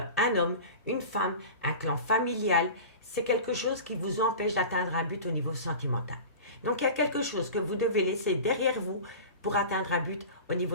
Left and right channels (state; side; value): inverted; both; correlation -0.34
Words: un homme, une femme, un clan familial. C'est quelque chose qui vous empêche d'atteindre un but au niveau sentimental. Donc, il y a quelque chose que vous devez laisser derrière vous pour atteindre un but au